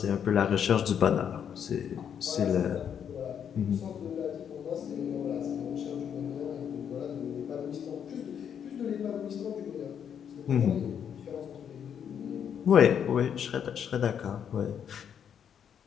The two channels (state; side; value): quieter; right; 8.3 dB